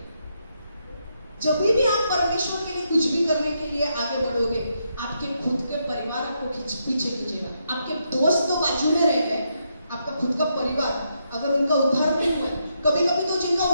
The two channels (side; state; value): both; inverted; correlation -0.80